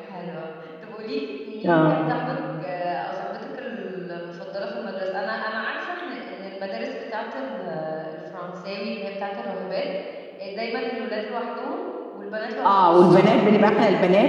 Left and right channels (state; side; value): identical; both; correlation 1.00